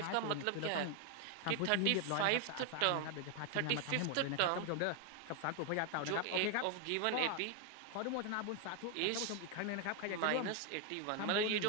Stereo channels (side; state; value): both; different; correlation 0.01